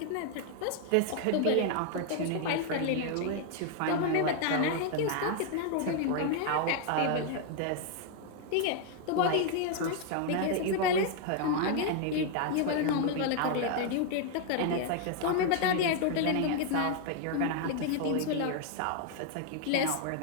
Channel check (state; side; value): different; both; correlation 0.00